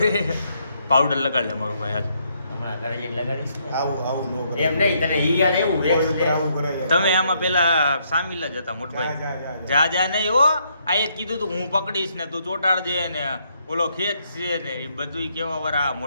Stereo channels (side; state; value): both; inverted; correlation -0.73